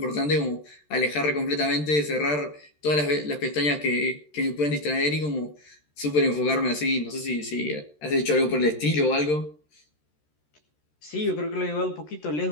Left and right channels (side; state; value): right; late; 13 ms